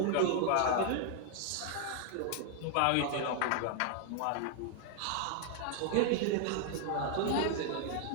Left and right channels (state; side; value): different; both; correlation 0.00